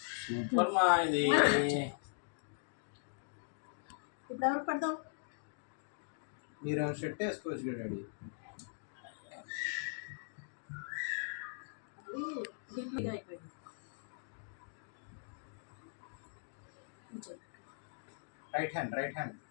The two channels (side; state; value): right; silent; digital silence